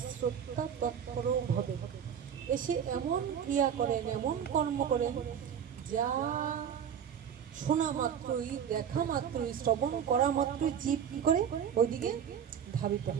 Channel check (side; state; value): left; quieter; 8.4 dB